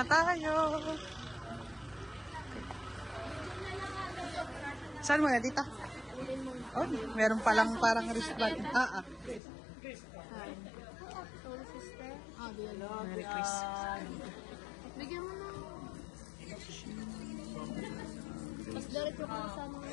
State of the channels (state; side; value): drops out; right; at 9.4 s